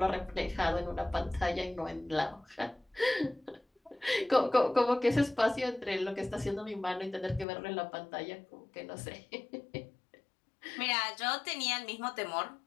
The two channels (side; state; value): right; drops out; at 7.5 s